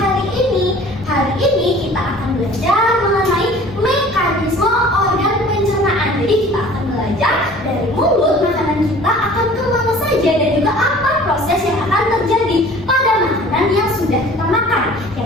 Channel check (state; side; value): normal; both; correlation 0.47